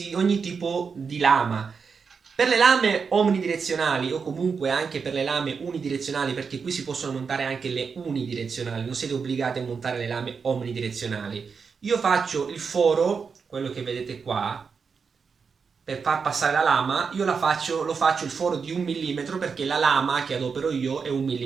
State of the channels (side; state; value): left; quieter; 5.6 dB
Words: tipo di lama. Per le lame omnidirezionali o comunque anche per le lame unidirezionali, perché qui si possono montare anche le unidirezionali, non siete obbligati a montare le lame omnidirezionali. Io faccio il foro, quello che vedete qua, per far passare la lama, io lo faccio il foro di 1 mm, perché la lama che adopero io è 1